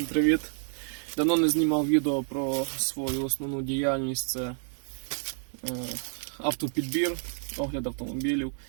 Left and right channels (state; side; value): silent; left; 58 dB below the other